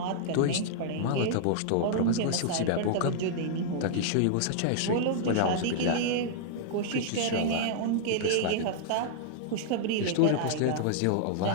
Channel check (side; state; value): both; different; correlation -0.01